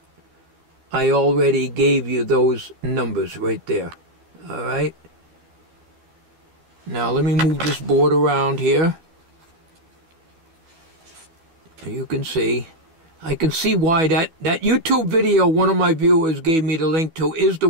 I already gave you those numbers right there. All right? Now let me move this board around here. You can see. I can see why that YouTube video one of my viewers gave me the link to is the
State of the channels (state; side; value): late; left; 12 ms